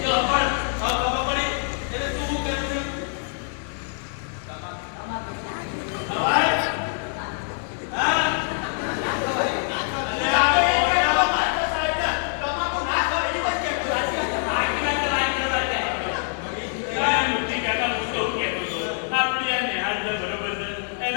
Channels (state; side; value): silent; right; 56 dB below the other